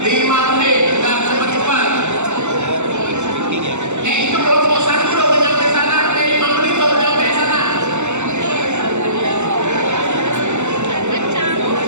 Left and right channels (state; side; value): late; left; 0.83 ms